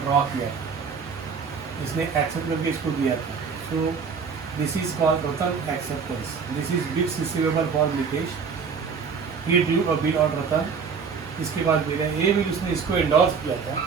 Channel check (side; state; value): left; quieter; 5.8 dB